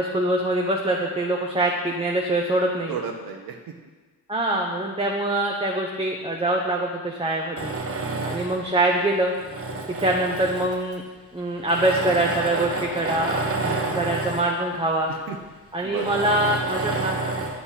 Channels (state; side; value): normal; both; correlation 0.26